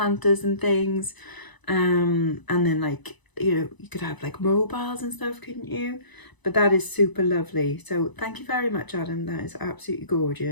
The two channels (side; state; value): right; late; 1.0 ms